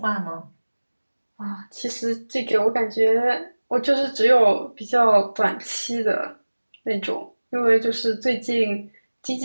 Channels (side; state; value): both; inverted; correlation -1.00